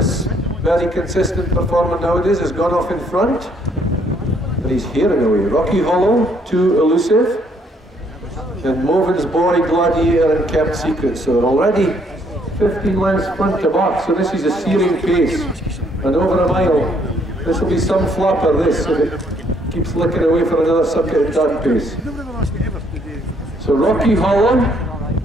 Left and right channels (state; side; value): normal; both; correlation 0.67